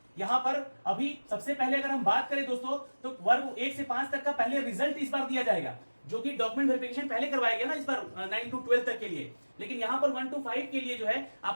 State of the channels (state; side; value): inverted; both; correlation -1.00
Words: यहाँ पर अभी सबसे पहले अगर हम बात करें दोस्तों, तो वर्ग 1 से 5 तक का पहले रिजल्ट इस बार दिया जाएगा, जो कि डॉक्यूमेंट वेरिफिकेशन पहले करवाया गया ना इस बार 9 to 12 तक के लिए। लेकिन यहाँ पर 1 to 5 के लिए जो है